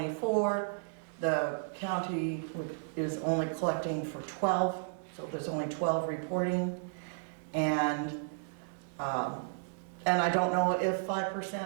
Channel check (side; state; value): left; silent; digital silence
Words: The county is only collecting for 12, so there's only 12 reporting. And I don't know if